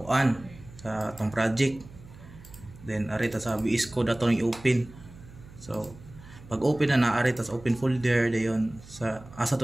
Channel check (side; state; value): right; noise; hum, 19 dB below the sound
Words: sa tong project. Then ari ta sa VS Code ato i-open. So pag open na ari ta sa open folder dayon sa asa